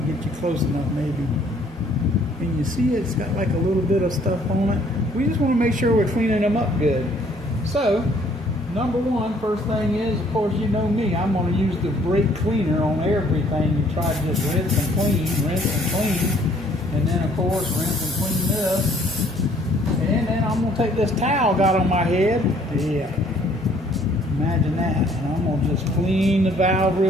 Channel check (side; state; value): both; normal; correlation 0.61